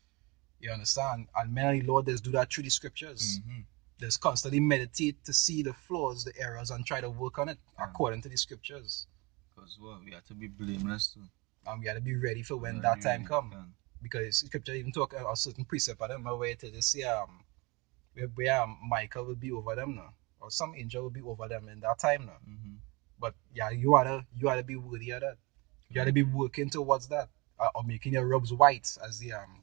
You understand? And many Lord does do that through the scriptures. There's constantly meditate to see the flaws, the errors, and try to work on it according to the scriptures. Because we have to be blameless too. And we have to be ready for when that time comes. Because scripture even talk a certain precept, I don't remember where to just say where Michael will be over them now, or some angel will be over them in that time now. But yeah, you ought to be worthy of that. You ought to be working towards that, or making your robes white, as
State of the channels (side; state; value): left; quieter; 26.3 dB